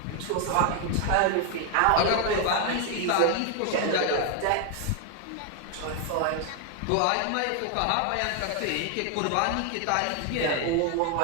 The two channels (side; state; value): both; different; correlation 0.00